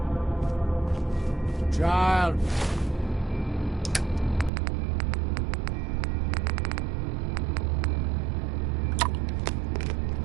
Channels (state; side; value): drops out; left; at 4.5 s